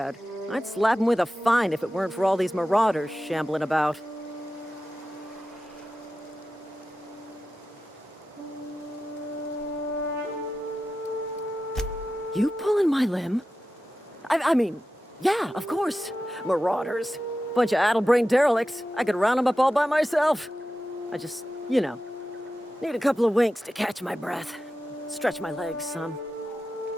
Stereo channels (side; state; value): both; normal; correlation 0.93